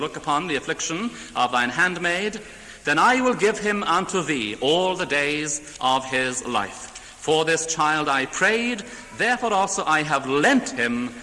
upon the affliction of thine handmaid, then I will give him unto thee all the days of his life. For this child I prayed, therefore also I have lent him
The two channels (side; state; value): both; identical; correlation 1.00